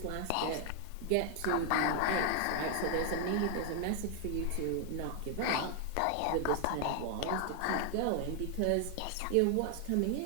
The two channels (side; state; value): both; different; correlation 0.00